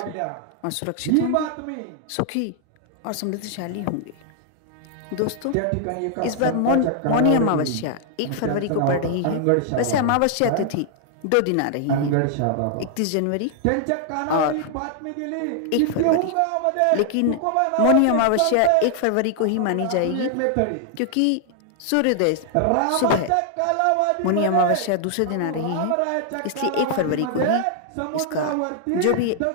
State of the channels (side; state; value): both; different; correlation 0.00